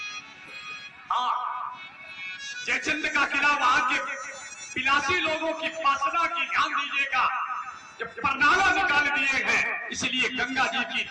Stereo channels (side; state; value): both; identical; correlation 1.00